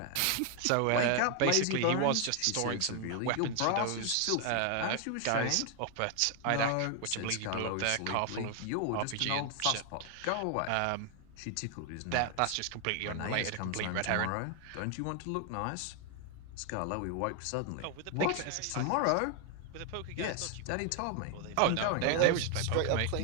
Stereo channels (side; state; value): both; different; correlation 0.00